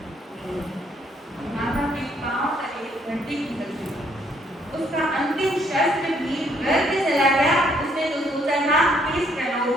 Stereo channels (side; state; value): both; normal; correlation 0.68